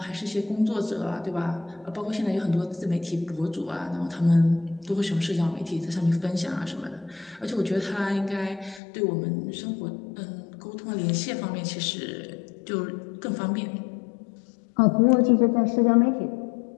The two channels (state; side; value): drops out; right; at 8.8 s